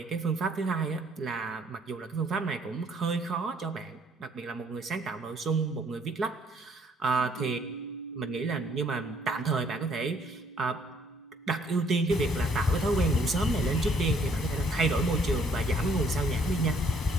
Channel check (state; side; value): normal; both; correlation 0.63